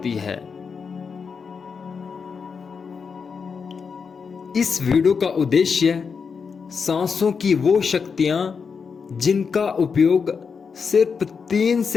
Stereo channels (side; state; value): right; quieter; 5.7 dB